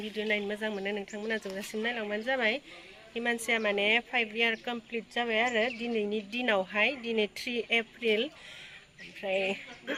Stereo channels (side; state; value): both; identical; correlation 1.00